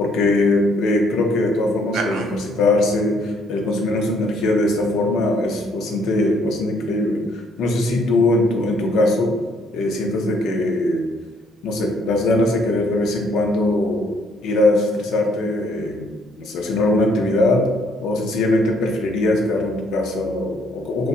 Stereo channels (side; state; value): both; normal; correlation 0.67